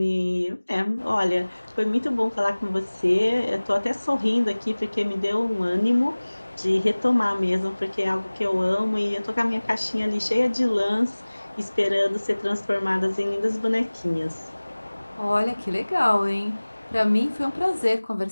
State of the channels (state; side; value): inverted; both; correlation -1.00